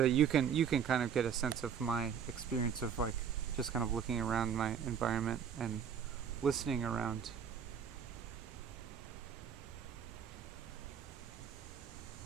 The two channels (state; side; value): quieter; left; 7.7 dB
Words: that you can kind of get a sense of my experience of like just kind of looking around my environment and listening around.